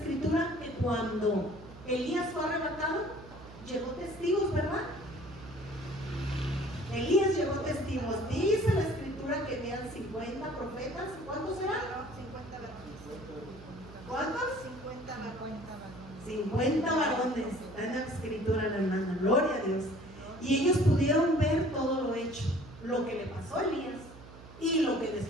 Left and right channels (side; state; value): right; noise; hum, 17 dB below the sound